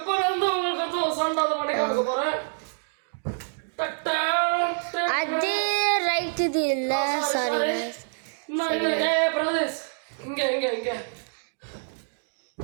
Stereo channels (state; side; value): silent; left; digital silence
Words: வந்து உங்களுக்கு சண்டாத பண்ணி காமிக்க போறேன். அது ரைட் இது இல்ல சாரி பிரதேஷ் இங்க இங்க இங்க